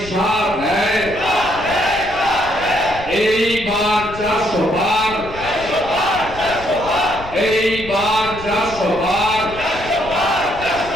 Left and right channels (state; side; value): noise; left; rumble, 14 dB below the sound